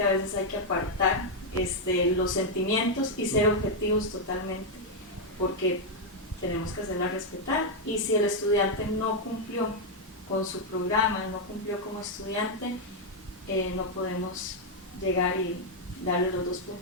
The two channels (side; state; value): both; normal; correlation -0.01